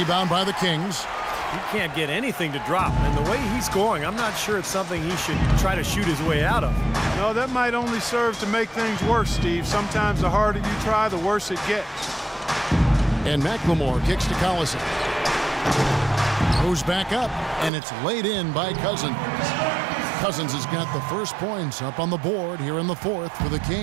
by the Kings. He can't get anything to drop, and the way he's scoring, I'm not sure it's something he should try to shoot his way out of. No, that might only serve to make things worse, Steve. Sometimes the harder you try, the worse it gets. And McLemore kicks to Collison. Goes back up, and it's laid in by Cousins. Cousins has got the first points up on the board here in the fourth for the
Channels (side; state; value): left; drops out; at 17.7 s